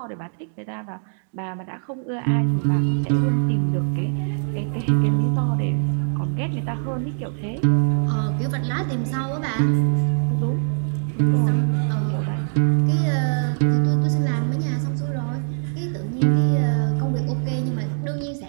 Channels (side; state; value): left; silent; digital silence